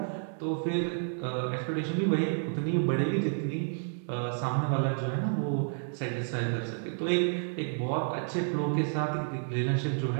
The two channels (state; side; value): silent; left; digital silence